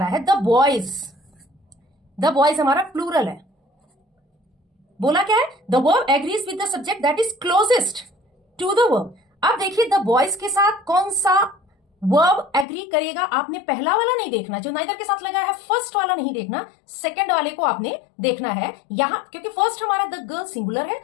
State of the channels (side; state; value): right; drops out; at 12.7 s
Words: है? The boys. द बॉयज हमारा प्लूरल है. बोला क्या है? The verb agrees with the subject that is closest to the verb. अब देखिए द बॉयज के साथ कौन सा वर्ब एग्री करेगा. आपने पहला वाला नहीं देखना जो नाइदर के साथ लगा है, फर्स्ट वाला नहीं देखना, सेकंड वाले को आपने देखना है यहां, क्योंकि फर्स्ट हमारा द गर्ल सिंगुलर है,